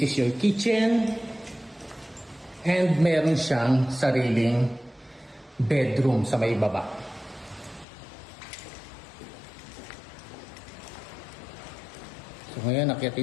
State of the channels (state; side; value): drops out; right; at 7.9 s